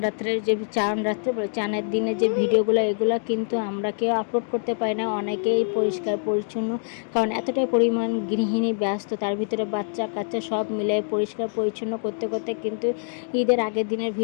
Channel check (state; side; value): silent; right; digital silence